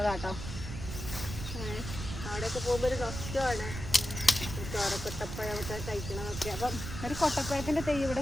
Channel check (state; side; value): noise; right; rumble, 7 dB below the sound